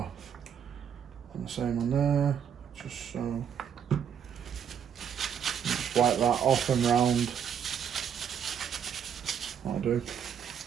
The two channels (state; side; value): quieter; left; 8.1 dB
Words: And the same on there, just so. Just wipe that off and round. That'll do.